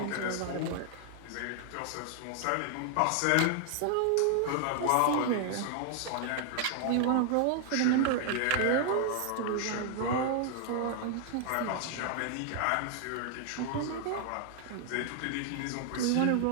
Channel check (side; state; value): both; different; correlation 0.00